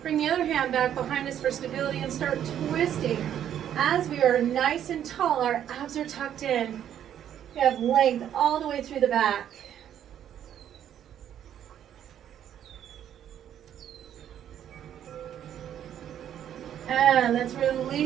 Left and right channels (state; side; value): quieter; left; 10.1 dB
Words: Bring the other hand back behind us for stability and start twisting. As we are nice and tall, our abs are tucked in. We have length all the way through the back. And let's